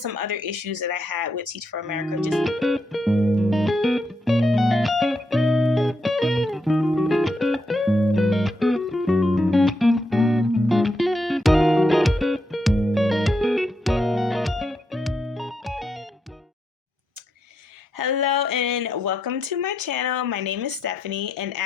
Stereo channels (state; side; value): normal; both; correlation 0.81